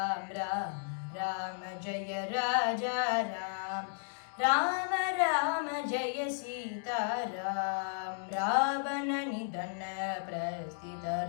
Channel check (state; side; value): silent; right; digital silence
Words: राम राम जय राजा राम राम राम जय सीताराम रावणनिधन